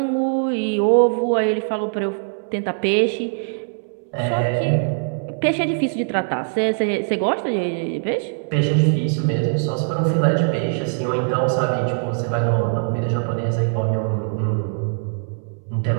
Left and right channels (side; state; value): left; silent; 62 dB below the other